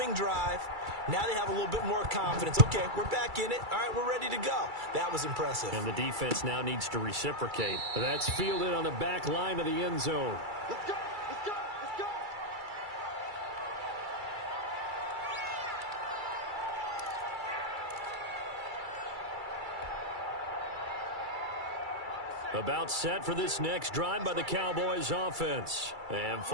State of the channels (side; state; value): left; late; 2.3 ms